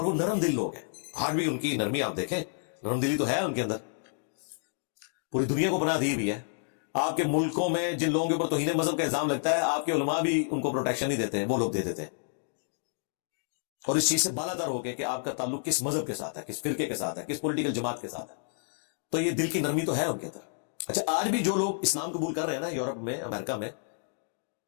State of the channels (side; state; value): right; silent; digital silence